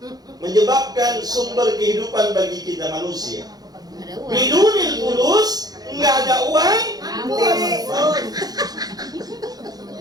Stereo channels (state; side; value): late; left; 0.19 ms